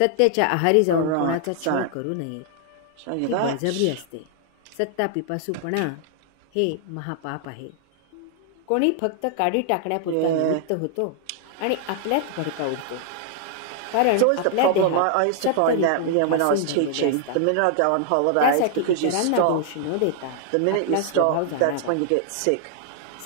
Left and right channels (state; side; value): different; both; correlation 0.00